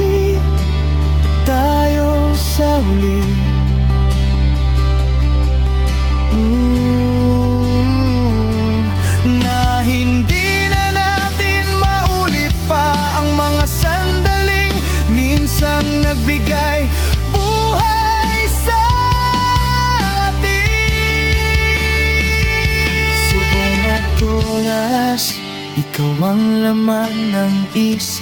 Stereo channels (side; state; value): both; identical; correlation 1.00